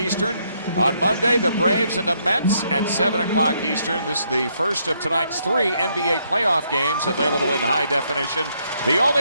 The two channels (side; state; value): both; inverted; correlation -0.74